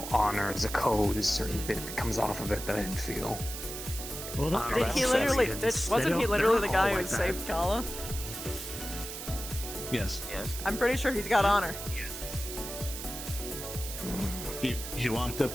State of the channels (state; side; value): noise; right; hiss, 8 dB below the sound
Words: honor. There's a code. There's a certain bit that comes off of it that I didn't feel. Well, Did he literally? Wasn't he literally the guy who saved Kala? Yes. I'm pretty sure he's got honor. He walked up